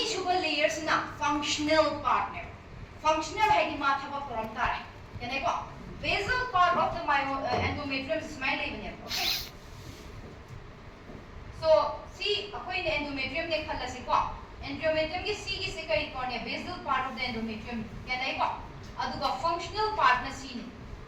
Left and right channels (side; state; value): both; identical; correlation 1.00